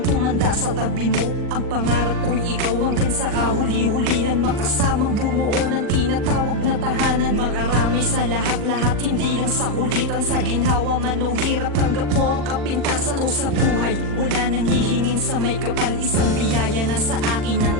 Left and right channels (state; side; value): late; left; 40 ms